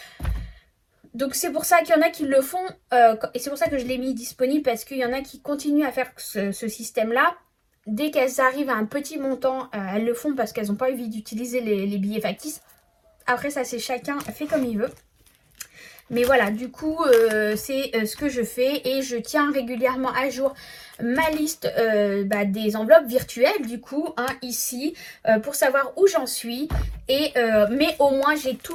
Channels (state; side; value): identical; both; correlation 1.00